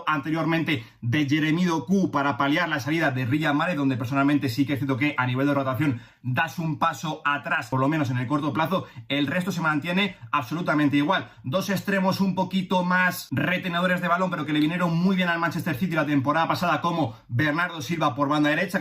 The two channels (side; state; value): both; identical; correlation 1.00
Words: anteriormente de Jeremy Doku para paliar la salida de Riyad Mahrez, donde personalmente sí que es cierto que a nivel de rotación das un paso atrás, por lo menos en el corto plazo. El resto se mantiene absolutamente igual. Dos extremos un poquito más retenedores de balón, pero que le vinieron muy bien al Manchester City la temporada pasada, como Bernardo Silva por banda derecha,